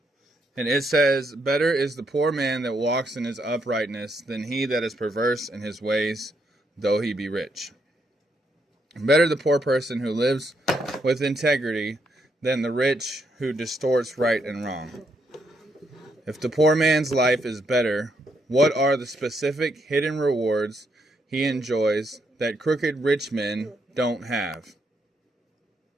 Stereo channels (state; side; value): normal; both; correlation 0.76